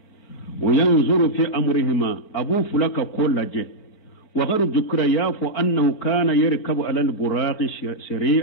وينظر في أمرهما أبو فلك كل لجي وغير ذكر يافو أنه كان يركب على البراق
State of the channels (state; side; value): late; right; 4.4 ms